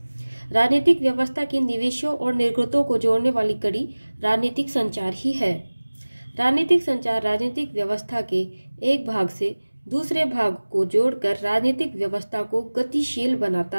राजनीतिक व्यवस्था के निवेशों और निर्गतों को जोड़ने वाली कड़ी राजनीतिक संचार ही है। राजनीतिक संचार राजनीतिक व्यवस्था के एक भाग से दूसरे भाग को जोड़कर राजनीतिक व्यवस्था को गतिशील बनाता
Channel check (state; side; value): inverted; both; correlation -1.00